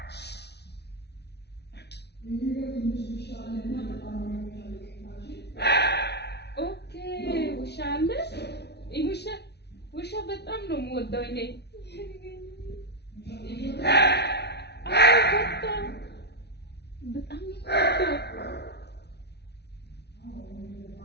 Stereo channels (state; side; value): late; right; 0.49 ms